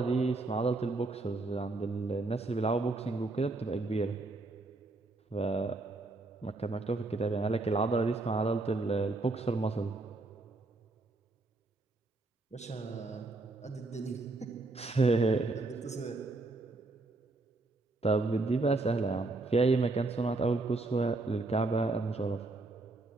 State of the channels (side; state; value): left; quieter; 3.2 dB